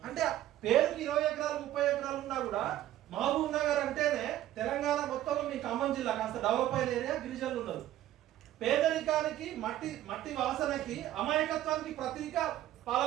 అంటే పేరుకి 20 ఎకరాలు 30 ఎకరాలు ఉన్నా కూడా మహబూబ్ నగర్ అంటేనే తెలంగాణ మొత్తంలో మీ ఖమ్మం జిల్లా కాస్త డెవలప్ అయిన ఏరియా, గిరిజనులు ఉన్నారు. పేదరికానికి, మట్టి వాసనకి, అమాయకత్వానికి ప్రతీక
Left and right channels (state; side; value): quieter; left; 13.3 dB